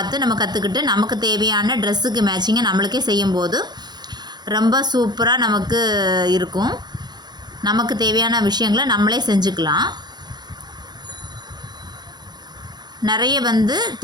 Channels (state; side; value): late; left; 0.20 ms